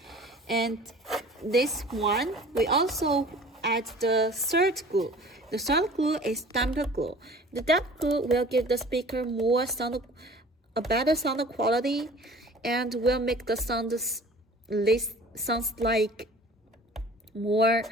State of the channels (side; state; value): both; normal; correlation 0.46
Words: And this one, we also add the third glue. The third glue is damper glue. The damper glue will give the speaker a better sound quality, and will make the sounds like more